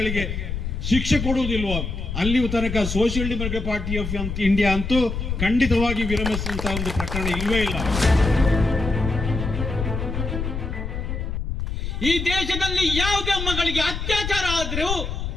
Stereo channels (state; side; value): noise; left; rumble, 4 dB below the sound